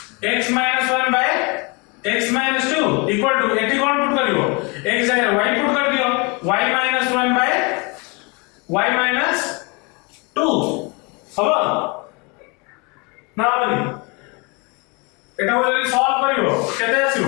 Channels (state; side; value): quieter; right; 29.8 dB